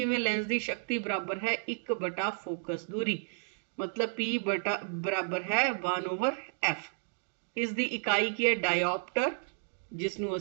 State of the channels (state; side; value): silent; left; digital silence